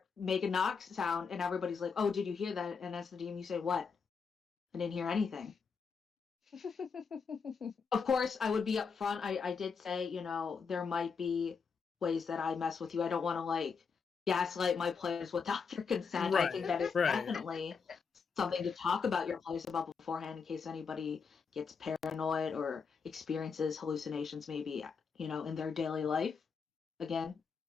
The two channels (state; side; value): quieter; right; 5.6 dB